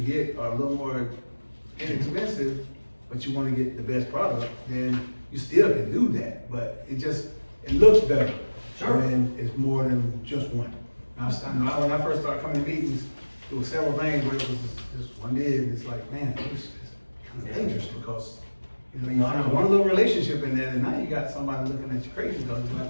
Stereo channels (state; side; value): inverted; both; correlation -1.00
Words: are a little more inexpensive, but you wanna get the best product, then you still can do that, but it looks better. Sure. When it's more than just one. I know when I first started coming to meetings, there were several things where it was just one bid, and it's like, man, it's kind of dangerous because, you know, you find one little relationship in there, and now you got somebody looking at you crazy because it's like,